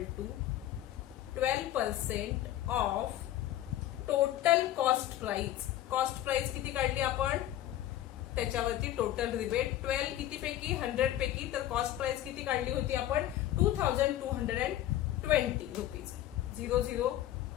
to 12% of total cost price. Cost price किती काढली आपण त्याच्यावरती टोटल रिबेट 12 किती पैकी 100 पैकी. तर कॉस्ट प्राइस किती काढली होती आपण 2220 रुपीज. 0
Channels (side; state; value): right; quieter; 13.2 dB